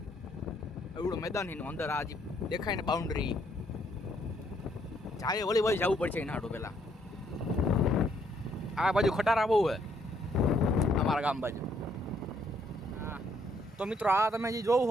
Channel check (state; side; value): normal; both; correlation 0.69